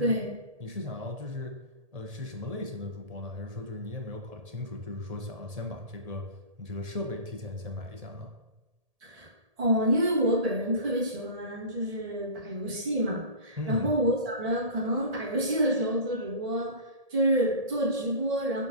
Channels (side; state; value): left; late; 1.8 ms